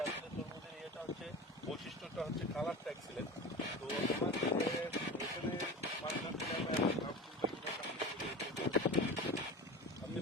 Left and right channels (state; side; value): normal; both; correlation 0.31